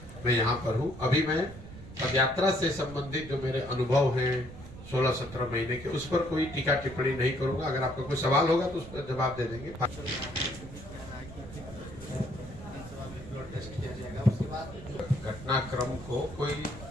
मैं यहाँ पर हूँ। अभी मैं पदयात्रा से संबंधित जो मेरे अनुभव हैं 16-17 महीने के, उस पर कोई टीका टिप्पणी नहीं करूंगा। अगर आपका कोई सवाल होगा तो उस पर जवाब दे देंगे। घटनाक्रम को कोई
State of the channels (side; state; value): right; noise; rumble, 14 dB below the sound